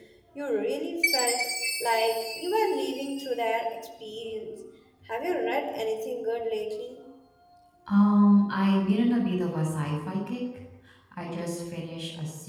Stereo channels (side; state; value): both; identical; correlation 1.00